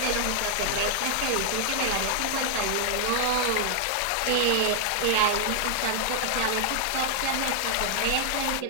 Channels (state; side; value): different; both; correlation 0.00